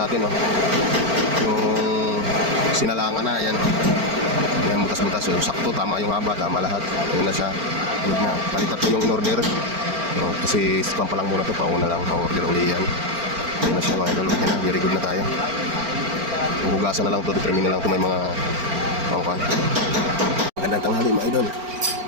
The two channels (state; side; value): late; left; 4.4 ms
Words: oh. Yung sinalangan na, yan. Yan, butas-butas, yung sakto, tama yung haba, tama lahat. Ayun na siya. Ayun na, palitat ko yung in-order. No, kasi spam pa lang muna to, pauna lang, pa-order uli yan. Ayun na siya mga idol, okay na, very good na tayo. Hugasan na lang to, determine na lang to, may mga pangkuhan. Magandang tanghali mga idol.